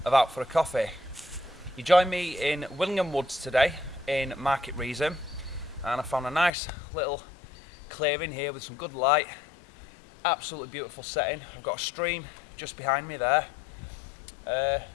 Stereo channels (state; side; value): drops out; right; at 6.5 s